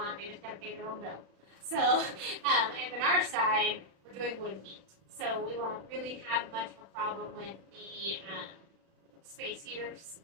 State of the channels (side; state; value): left; late; 36 ms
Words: They just got to pay their own bill. So, and on our side, we're doing wood heat. So we won't really have much of a problem with the space heaters